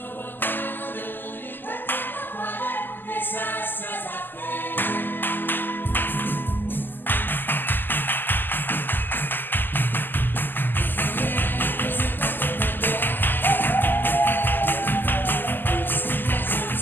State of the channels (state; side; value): late; right; 0.091 ms